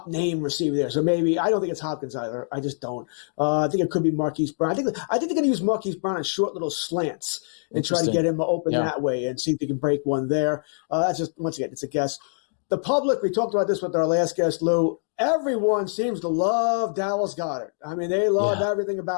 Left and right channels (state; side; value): silent; right; digital silence